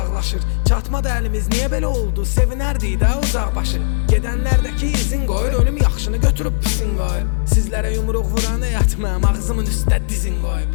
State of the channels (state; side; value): silent; right; digital silence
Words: Çatmadı əlimiz, niyə belə oldu? Sevinərdik də uzaqbaşı. Gedənlərdəki izin qoyur, ölüm yaxşını götürüb pisin qoyur. Sizlərə yumruq vuran yatmam, ağzımın üstə dizin